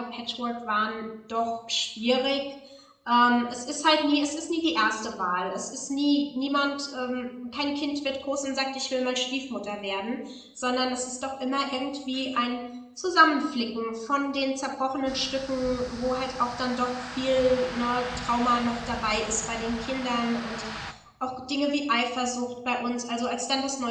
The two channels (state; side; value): identical; both; correlation 1.00